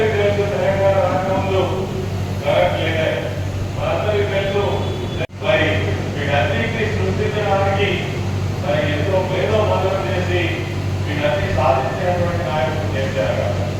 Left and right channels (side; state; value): both; identical; correlation 1.00